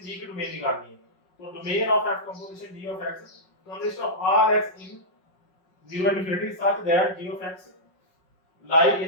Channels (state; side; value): late; right; 5.5 ms